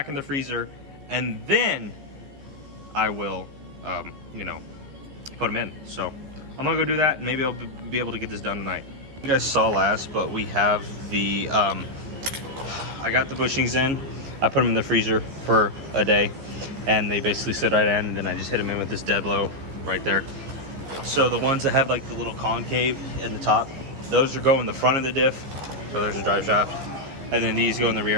in the freezer, and then I will, you know, put them in. So I'm gonna go do that, and maybe I'll be able to get this done tonight. You guys saw last, but we have the, I got the bushings in, I put them in the freezer for a day, and they basically sit right in, and then I just hit them in with this dead blow right there. So the ones that have like the little concave in the top, those are go in the front of the diff, so there's a drive shaft, and then these go in the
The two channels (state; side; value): late; left; 14 ms